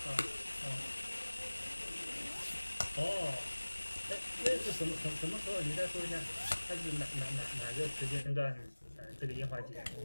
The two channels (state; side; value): inverted; both; correlation -1.00